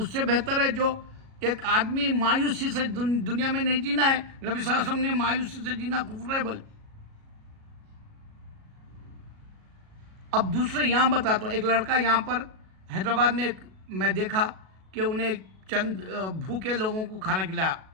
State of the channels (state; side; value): late; left; 37 ms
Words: سے بہتر ہے جو ایک آدمی مایوسی سے دنیا میں نہیں جینا ہے. نبی صلی اللہ علیہ وسلم نے مایوسی سے جینا کفر ہے بولے. اب دوسرے یہاں بتاتا ہوں, ایک لڑکا یہاں پر حیدرآباد میں میں دیکھا کہ انہیں چند بھوکے لوگوں کو کھانا کھلایا